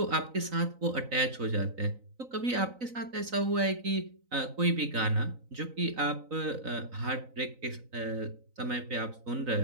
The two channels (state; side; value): late; left; 3.9 ms